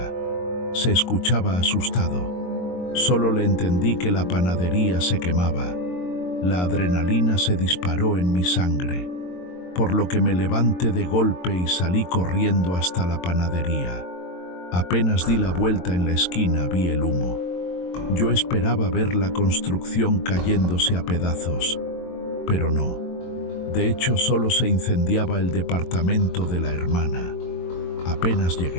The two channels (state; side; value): late; right; 22 ms